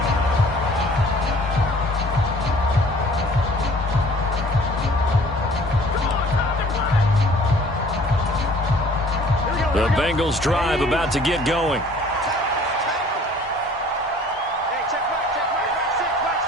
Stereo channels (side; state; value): both; normal; correlation 0.52